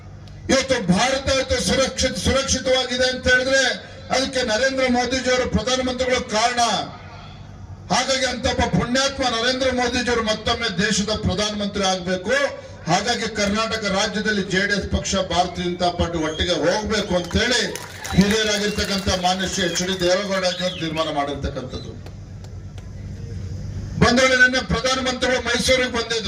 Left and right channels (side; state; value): both; identical; correlation 1.00